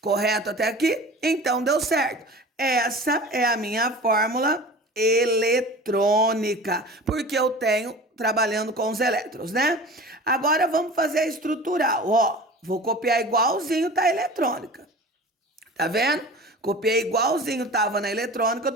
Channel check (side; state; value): both; normal; correlation 0.38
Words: Correto até aqui? Então deu certo. Essa é a minha fórmula eletrônica, porque eu tenho trabalhando com os elétrons, né? Agora vamos fazer a estrutural, ó. Vou copiar igualzinho tá a eletrônica. Tá vendo? Copiei igualzinho tava na eletrônica, eu